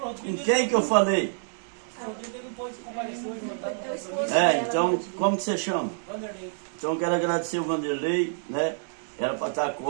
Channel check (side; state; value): left; silent; 60 dB below the other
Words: quem que eu falei? Então, como que você chama? Vanderlei. Então, eu quero agradecer o Vanderlei, né? Era para estar a